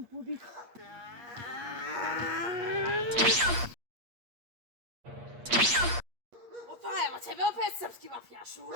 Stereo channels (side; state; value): left; late; 8.5 ms